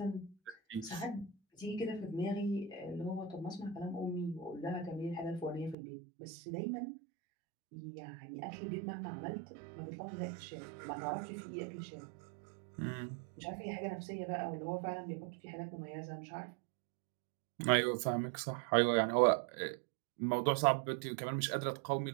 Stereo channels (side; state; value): left; drops out; at 5.8 s